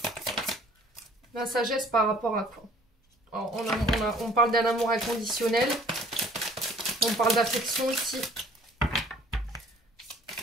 La sagesse par rapport à quoi? Alors, on parle d'un amour inconditionnel. On parle d'affection ici.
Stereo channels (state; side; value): normal; both; correlation 0.54